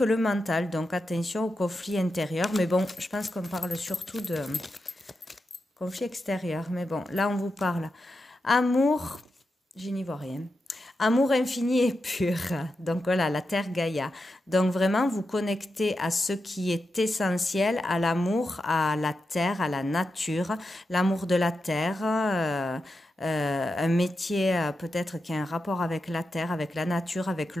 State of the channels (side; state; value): both; normal; correlation 0.89